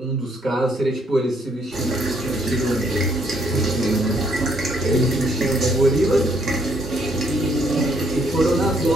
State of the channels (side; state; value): both; normal; correlation 0.68